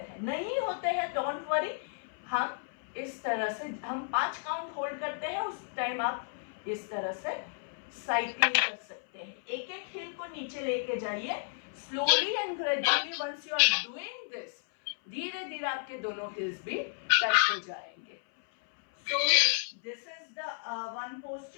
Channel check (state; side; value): silent; right; 56 dB below the other